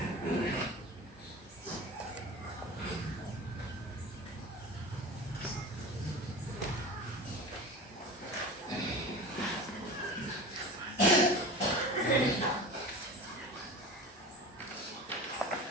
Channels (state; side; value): normal; both; correlation 0.33